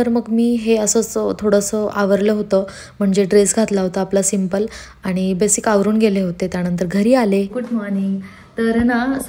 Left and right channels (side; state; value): both; identical; correlation 1.00